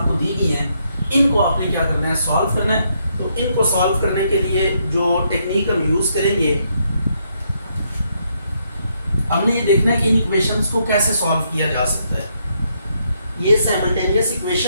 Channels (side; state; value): both; inverted; correlation -0.75